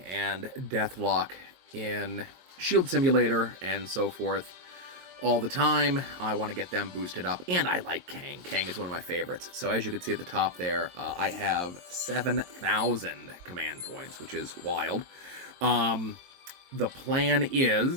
Deathlock in Shield Simulator and so forth all the time. I want to get them boosted up, and I like Kang. Kang is one of my favorites. So as you can see at the top there, I have 7,000 command points, which is wild. The plan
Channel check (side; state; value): left; late; 22 ms